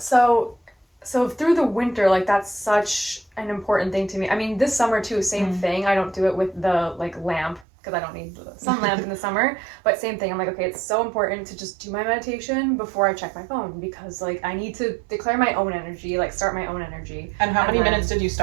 through the winter, like, that's such an important thing to me. I mean, this summer too, same thing. I don't do it with the like lamp, because I don't need the sun lamp in the summer. But same thing. I'm like, okay, it's so important to just do my meditation before I check my phone, because like, I need to declare my own energy, like start my own energy. And how many minutes did you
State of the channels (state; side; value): drops out; left; at 7.7 s